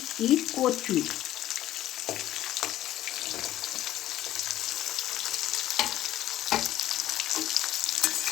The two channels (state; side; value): quieter; right; 13.8 dB